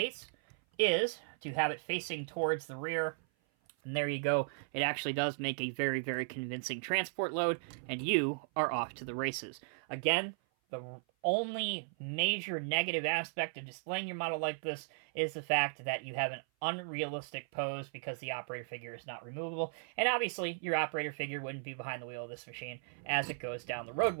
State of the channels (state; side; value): silent; left; 54 dB below the other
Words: is to have it facing towards the rear. And there you go. It actually does make a very, very convincing transport load, and you are off to the races. Again, the only major negative aspect of displaying your model like this is the fact that you have an unrealistic pose because the operator figure is not removable. And obviously, your operator figure wouldn't be behind the wheel of this machine as it goes down the